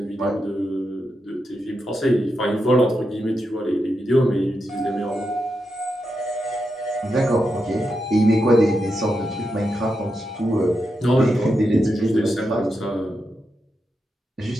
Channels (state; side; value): normal; both; correlation 0.86